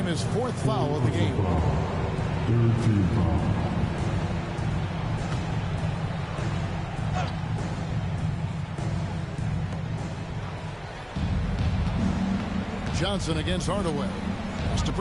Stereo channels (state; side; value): identical; both; correlation 1.00